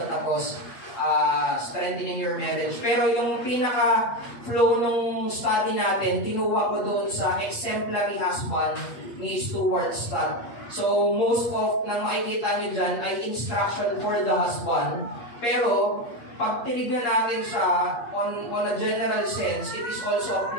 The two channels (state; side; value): late; right; 8.5 ms